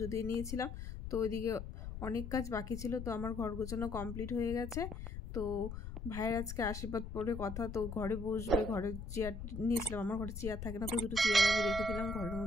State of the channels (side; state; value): left; noise; rumble, 7 dB below the sound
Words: দিয়ে নিয়েছিলাম। তো ওইদিকে অনেক কাজ বাকি ছিল, তো আমার ঘর গোছানো কমপ্লিট হয়ে গেছে। তো ভাইয়ের আজকে আশীর্বাদ পরে কথা, তো ঘরে বসবে, ঘরে চেয়ার নিয়েছিলাম, আমার ঘরে চেয়ার থাকে না, তো দুটো চেয়ার আমি রেখে দিলাম, ঘরের